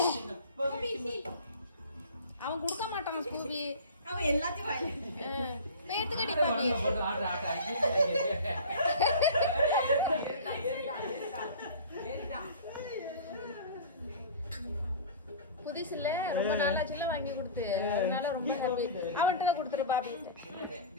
அவன் கொடுக்க மாட்டான் ஸ்கூபி. அவன் எல்லாத்தையும் பேத்துக்கடி பாபி. புதுசு இல்ல, ரொம்ப நாளாச்சுல வாங்கி கொடுத்து, அதனால ரொம்ப ஹாப்பி. அவன்கிட்ட கொடுத்துரு பாபி.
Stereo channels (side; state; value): both; inverted; correlation -0.37